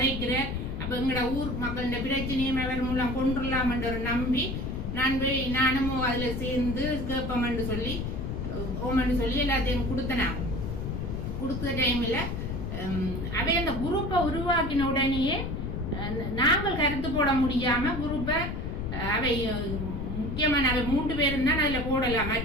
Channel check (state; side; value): noise; left; rumble, 4 dB below the sound